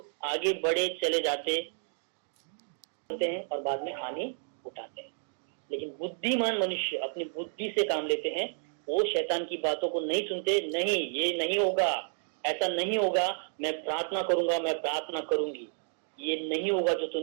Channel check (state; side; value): silent; left; digital silence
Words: आगे बढ़े चले जाते हैं और बाद में हानि उठाते हैं। लेकिन बुद्धिमान मनुष्य अपनी बुद्धि से काम लेते हैं, वो शैतान की बातों को नहीं सुनते। नहीं, ये नहीं होगा, ऐसा नहीं होगा, मैं प्रार्थना करूंगा, मैं प्रार्थना करूंगी, ये नहीं होगा जो